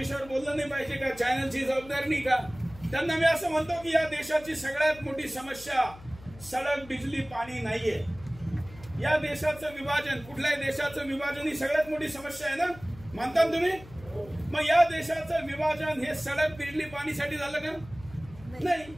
बोललं नाही पाहिजे का, चॅनलची जबाबदारी नाही का. त्यांना मी असं म्हणतो की या देशाची सगळ्यात मोठी समस्या सडक, बिजली, पाणी नाहीये. या देशाचं विभाजन, कुठल्याही देशाचं विभाजन ही सगळ्यात मोठी समस्या आहे ना, मानता तुम्ही. मग या देशाचं विभाजन हे सडक, बिजली, पाणीसाठी झालं का नाही.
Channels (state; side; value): noise; left; hum, 19 dB below the sound